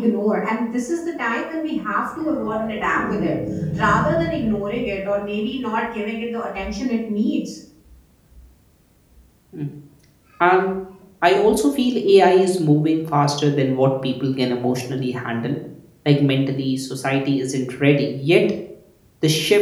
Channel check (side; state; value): both; identical; correlation 1.00